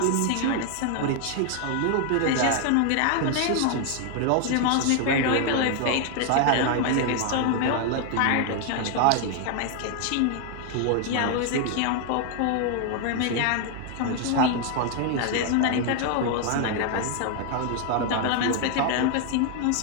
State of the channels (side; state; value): both; different; correlation 0.00